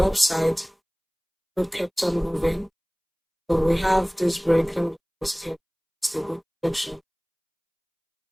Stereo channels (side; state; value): both; identical; correlation 1.00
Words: upside, gold kept on moving. So we have this break, let me just here, it's the good projection.